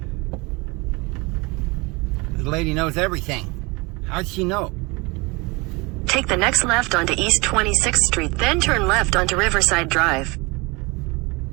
This lady knows everything. How'd she know? Take the next left onto East 26th Street, then turn left onto Riverside Drive.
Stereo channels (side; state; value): left; quieter; 26.1 dB